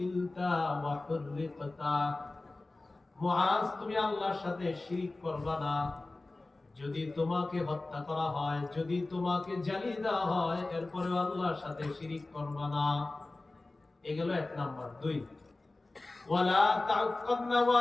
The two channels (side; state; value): right; quieter; 3.1 dB